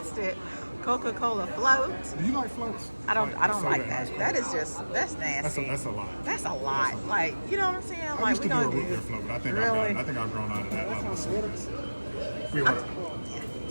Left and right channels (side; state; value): both; inverted; correlation -1.00